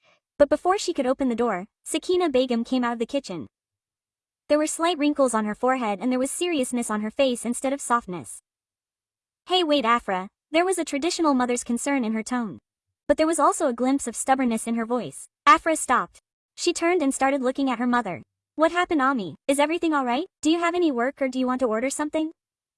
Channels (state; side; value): identical; both; correlation 1.00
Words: But before she could open the door, Sakina Begum came out of the kitchen. There were slight wrinkles on her forehead and there was seriousness on her face instead of softness. Hey wait Afra, there was a traditional mother's concern in her tone. But there was also a glimpse of stubbornness in her voice. Afra stopped. She turned and started looking at her mother. What happened Ami? Is everything alright? Do you have any work or do you want to order something?